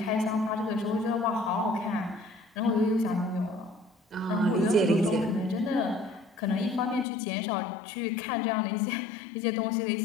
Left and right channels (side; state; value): right; drops out; at 7.1 s